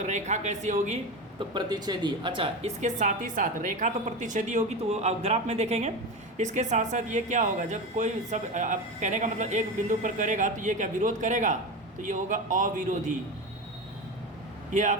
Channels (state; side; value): normal; both; correlation 0.22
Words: रेखा कैसी होगी, तो प्रतिच्छेदी। अच्छा, इसके साथ ही साथ रेखा तो प्रतिच्छेदी होगी, तो आप ग्राफ में देखेंगे। इसके साथ साथ ये क्या होगा, जब कोई सब अब कहने का मतलब एक बिंदु पर करेगा तो ये क्या विरोध करेगा, तो ये होगा अविरोधी। ये